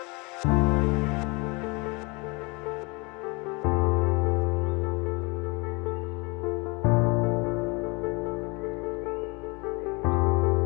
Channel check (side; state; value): right; quieter; 28.0 dB